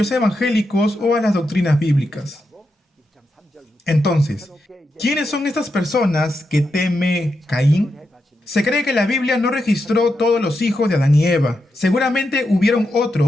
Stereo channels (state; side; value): normal; both; correlation 0.86